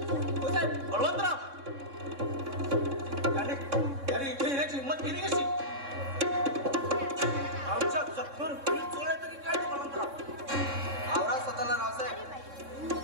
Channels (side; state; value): left; late; 3.6 ms